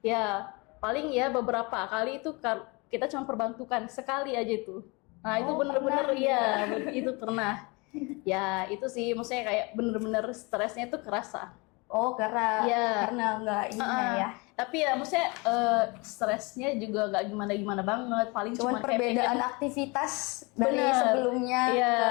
ya paling ya beberapa kali itu kita cuma perbantukan sekali aja itu. Nah itu bener-bener itu pernah. Ya itu sih maksudnya kayak bener-bener stresnya itu kerasa. Oh karena nggak ini ya. Tapi ya maksudnya stresnya juga nggak gimana-gimana banget. Paling cuman perbedaan aktivitas dari sebelumnya. Iya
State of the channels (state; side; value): quieter; right; 27.8 dB